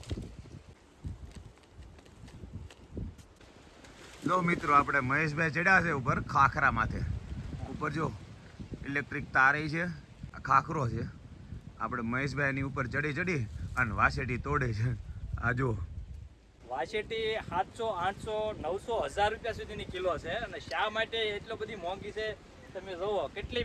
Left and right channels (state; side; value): identical; both; correlation 1.00